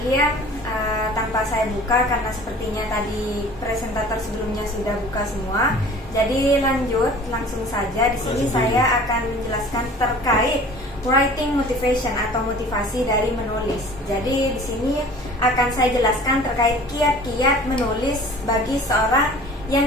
Tanpa saya buka karena sepertinya tadi presentator sebelumnya sudah buka semua. Jadi langsung saja. Di sini saya akan menjelaskan terkait writing motivation atau motivasi dari menulis. Jadi di sini akan saya jelaskan terkait kiat-kiat menulis bagi seorang yang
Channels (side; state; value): both; normal; correlation 0.45